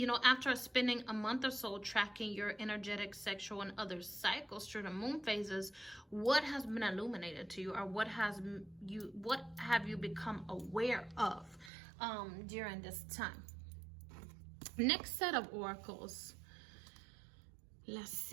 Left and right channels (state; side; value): drops out; left; at 11.7 s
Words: spending a month or so tracking your energetic, sexual, and other cycles through the moon phases, what has been illuminated to you, or what have you become aware of during this time? Next set of oracles. Let's